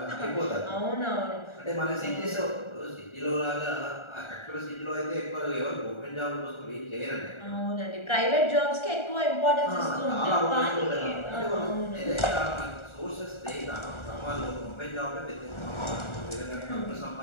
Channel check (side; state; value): right; late; 1.4 ms